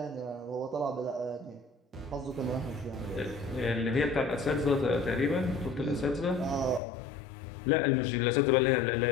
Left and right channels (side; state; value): right; drops out; at 6.8 s